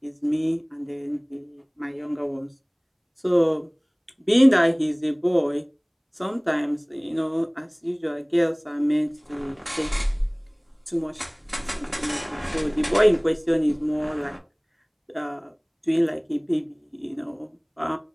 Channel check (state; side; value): identical; both; correlation 1.00